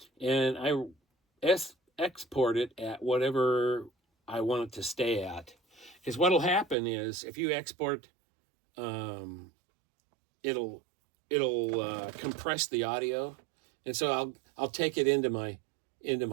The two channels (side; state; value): left; drops out; at 6.8 s